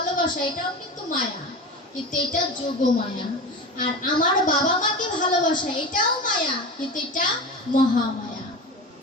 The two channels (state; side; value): normal; both; correlation 0.28